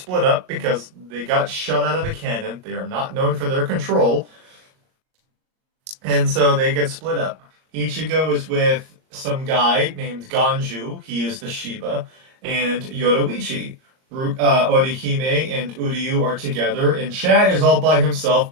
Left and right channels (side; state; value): left; late; 38 ms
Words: up because they got shot out of a cannon. They are not known for their control. And so they get split up. Ichigo is with some guy named Ganju. He is the Shiba. And Yoruichi. Orihime and Uryu are together, and Chad is all by himself,